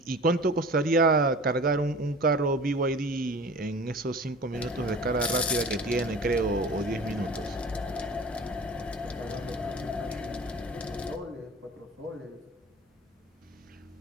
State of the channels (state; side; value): normal; both; correlation 0.40